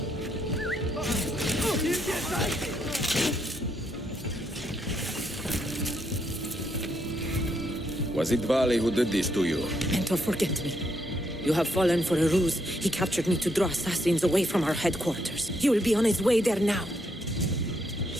Was it Vali who did this to you? Mentor, forget me. You have fallen for a ruse. He captured me to draw assassins away from our headquarters. He will be on his way there now.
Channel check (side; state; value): both; normal; correlation 0.76